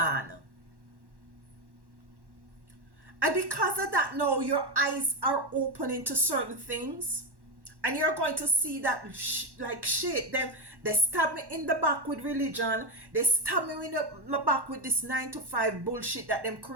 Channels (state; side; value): late; left; 1.1 ms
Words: And because of that, now your eyes are opening to certain things, and you're going to see that like shit, they stab me in the back with religion. They stab me in my back with this 9 to 5 bullshit that them